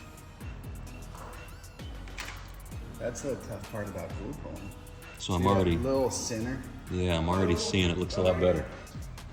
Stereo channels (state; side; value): identical; both; correlation 1.00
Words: That's the tough part about glue pulling. So I'm See that already, little center. yeah, I'm already seeing it looks a lot better.